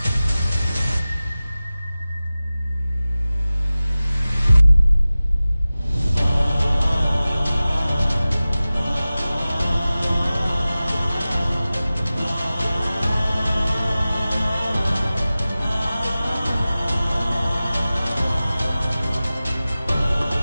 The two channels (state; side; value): inverted; both; correlation -0.96